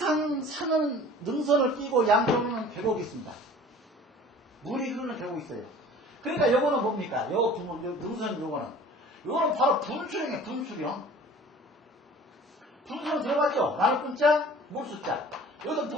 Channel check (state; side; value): normal; both; correlation 0.46